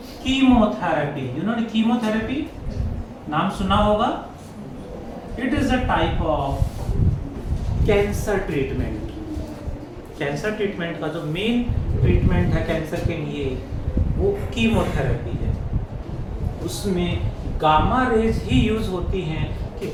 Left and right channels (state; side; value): identical; both; correlation 1.00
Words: कीमोथेरेपी, जिन्होंने कीमोथेरेपी नाम सुना होगा, it is a type of cancer treatment. Cancer treatment का जो मेन ट्रीटमेंट है कैंसर के लिए, वो कीमोथेरेपी है। उसमें गामा रेज ही यूज होती हैं कि